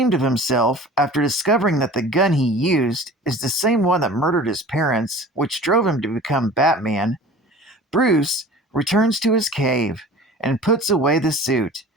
of himself after discovering that the gun he used is the same one that murdered his parents, which drove him to become Batman, Bruce returns to his cave and puts away the suit,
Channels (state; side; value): normal; both; correlation 0.41